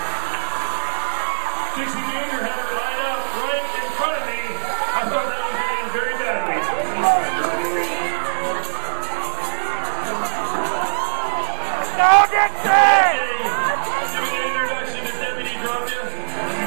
Dixie Danger had her lined up right in front of me. I thought that was going to end very badly. Giving an introduction to Deputy Drapia.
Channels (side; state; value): left; silent; 64 dB below the other